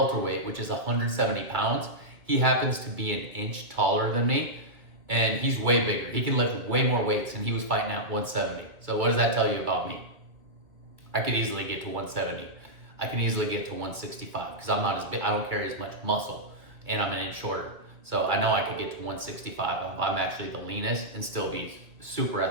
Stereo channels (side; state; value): left; late; 2.2 ms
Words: which is 170 pounds. He happens to be an inch taller than me and he's way bigger. He can lift way more weights and he was fighting at 170. So what does that tell you about me? I could easily get to 170. I can easily get to 165 because I'm not as big. I don't carry as much muscle and I'm an inch shorter. So I know I could get to 165. I'm actually the leanest and still be super